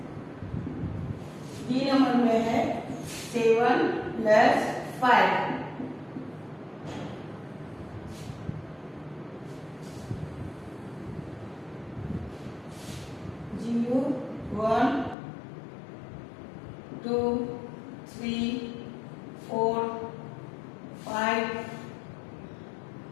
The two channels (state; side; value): drops out; right; at 15.2 s